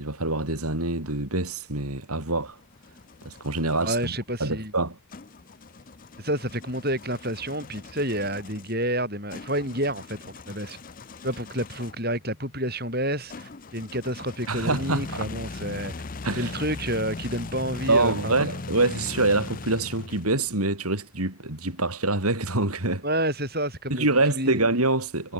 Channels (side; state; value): both; normal; correlation -0.13